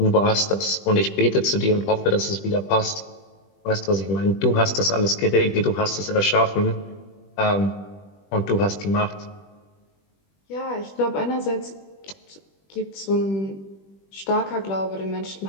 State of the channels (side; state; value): right; late; 20 ms